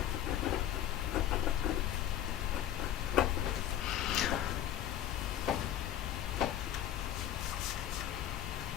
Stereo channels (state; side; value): quieter; right; 11.6 dB